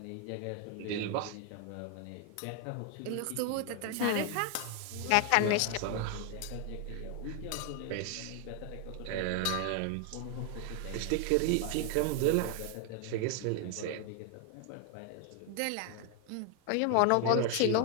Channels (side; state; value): both; different; correlation 0.00